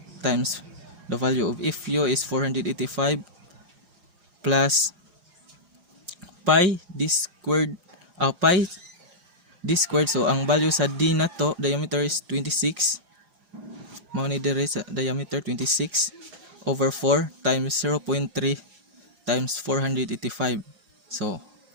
times the value of Fu is 485 plus pi d squared, so ang value sa D na to, diameter is 26, mao ni dire sa diameter 26 over 4 times 0.3 times 485. So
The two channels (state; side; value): late; left; 4.9 ms